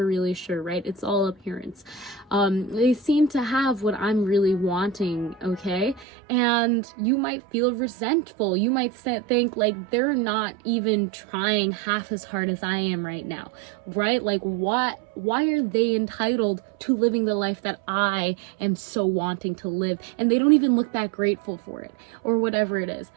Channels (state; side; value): drops out; left; at 6.1 s